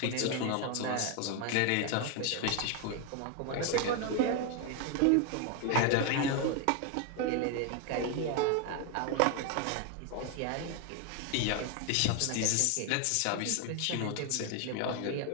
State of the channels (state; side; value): different; both; correlation 0.01